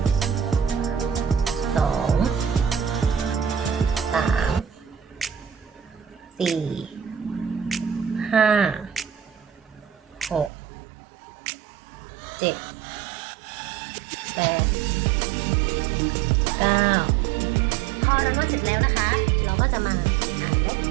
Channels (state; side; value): drops out; left; at 10.5 s